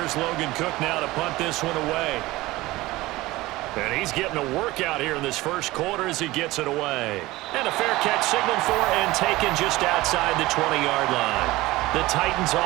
Logan Cook now to punt this one away. And he's getting a workout here in this first quarter as he gets it away. And a fair catch signaled for and taken just outside the 20-yard line. The Titans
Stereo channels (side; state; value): left; quieter; 19.1 dB